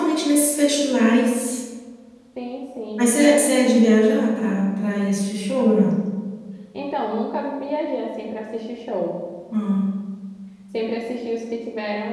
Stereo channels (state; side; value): identical; both; correlation 1.00